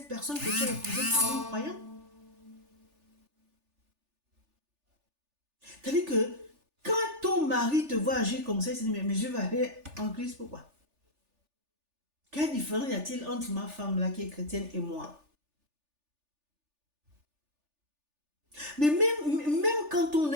personne que tu as épousée en croyant. C'est-à-dire que quand ton mari te voit agir comme ça, il se dit, mais je vais aller en Christ, pourquoi? Quelle différence y a-t-il entre ma femme là qui est chrétienne et moi? Mais même quand on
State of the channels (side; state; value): left; late; 3.4 ms